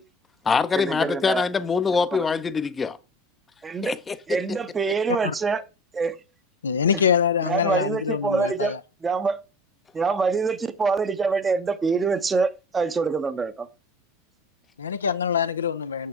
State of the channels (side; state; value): both; normal; correlation 0.41